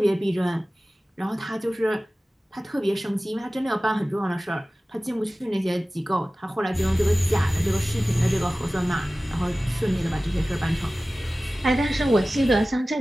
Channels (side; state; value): both; normal; correlation 0.97